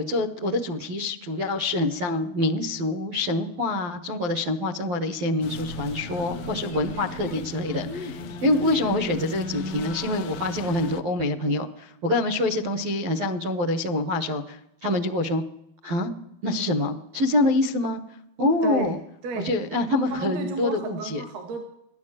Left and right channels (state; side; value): late; left; 12 ms